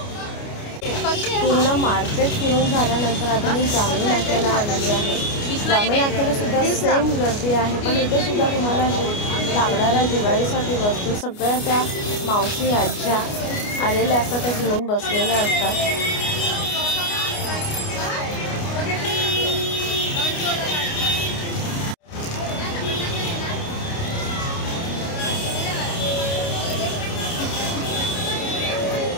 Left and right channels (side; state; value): right; late; 29 ms